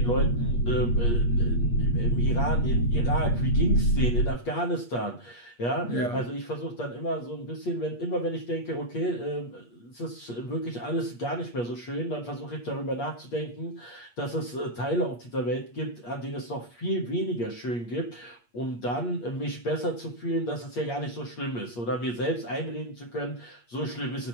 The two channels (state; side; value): late; right; 8.4 ms